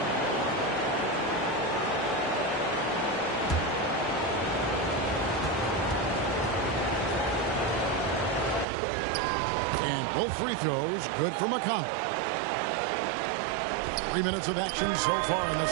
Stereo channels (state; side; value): drops out; left; at 8.7 s